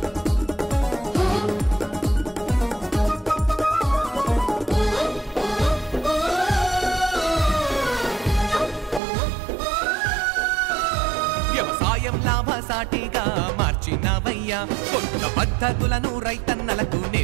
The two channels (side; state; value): left; drops out; at 9.0 s